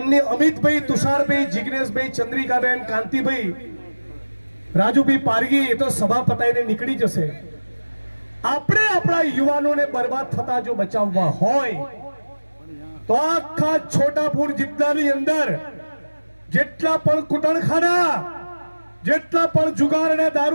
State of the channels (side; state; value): both; inverted; correlation -1.00